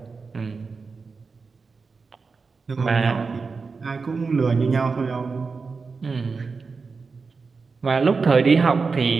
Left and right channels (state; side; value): quieter; left; 4.6 dB